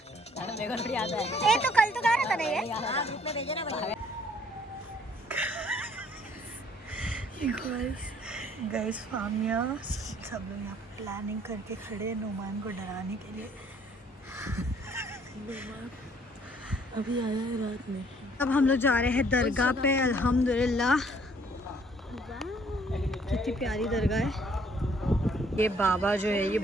ये तो कल तो गा रहा था ना ये। गाइस फामिया सब लोग यहाँ प्लानिंग करके खड़े हैं नुमान को डराने के लिए। अभी आया है रात में। अब हम लोग जा रहे हैं दरगाह पे। अल्हम्दुलिल्लाह कितनी प्यारी दरगाह है। ये बाबा जो है ये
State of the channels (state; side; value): normal; both; correlation 0.62